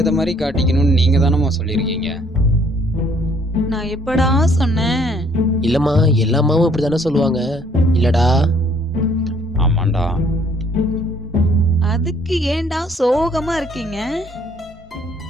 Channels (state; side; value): normal; both; correlation 0.62